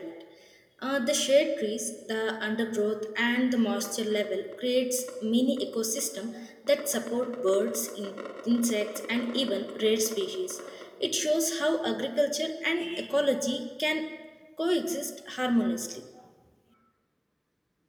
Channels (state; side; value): identical; both; correlation 1.00